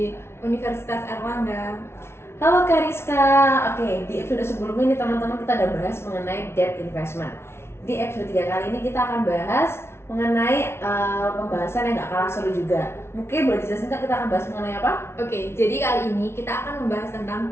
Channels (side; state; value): right; late; 0.12 ms